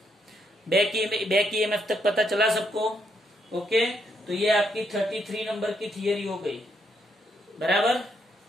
बैक ईएमएफ तक पता चला सबको? ओके, तो ये आपकी 33 नंबर की थियरी हो गई, बराबर।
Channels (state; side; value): normal; both; correlation 0.76